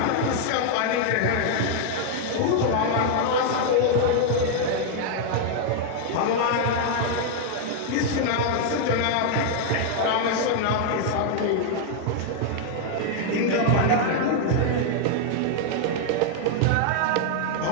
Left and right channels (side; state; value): both; different; correlation 0.00